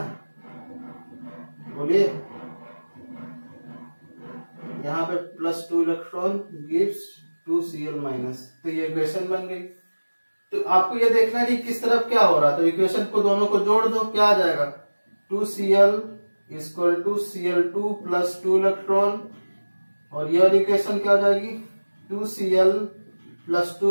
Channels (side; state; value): both; inverted; correlation -1.00